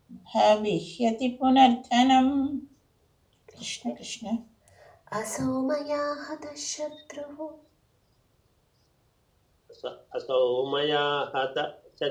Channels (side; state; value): both; identical; correlation 1.00